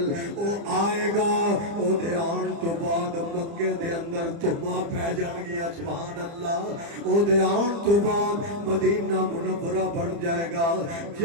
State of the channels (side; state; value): left; late; 30 ms